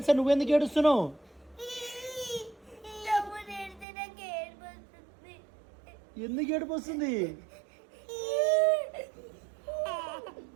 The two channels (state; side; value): drops out; left; at 3.9 s